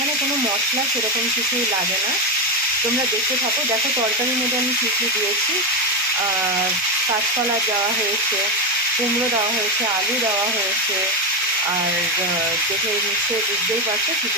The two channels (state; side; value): normal; both; correlation 0.11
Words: কোনো মশলা সেরকম কিছুই লাগে না, তোমরা দেখতে থাকো। দেখো তরকারির মধ্যে আমি কী কী দিয়েছি। কাঁচকলা দেওয়া হয়েছে, কুমড়ো দেওয়া হয়েছে, আলু দেওয়া হয়েছে, আর দেখে নিশ্চয়ই বুঝতেই পারছো